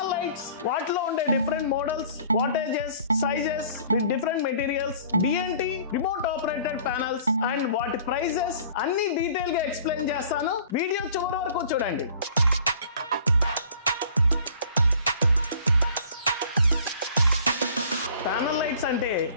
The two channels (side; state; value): both; inverted; correlation -0.51